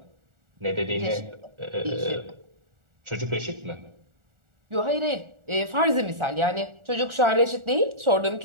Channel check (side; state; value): left; late; 1.4 ms